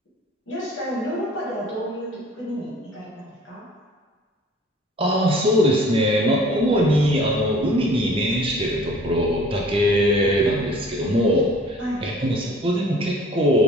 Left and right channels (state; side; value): normal; both; correlation 0.50